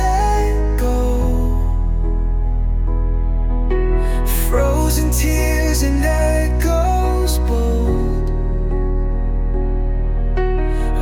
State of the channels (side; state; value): both; identical; correlation 1.00